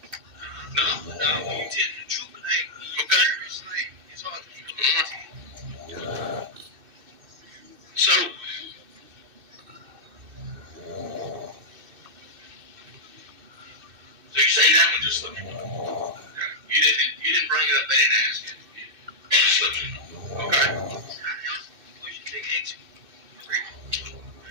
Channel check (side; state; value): left; late; 2.6 ms